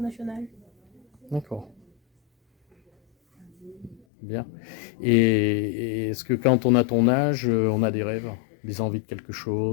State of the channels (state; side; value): drops out; right; at 4.0 s